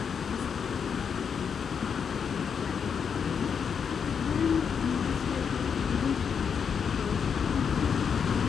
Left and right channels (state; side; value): quieter; right; 6.8 dB